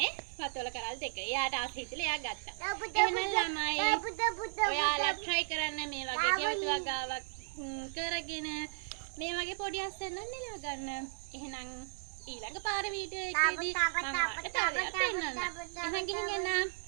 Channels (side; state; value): left; silent; digital silence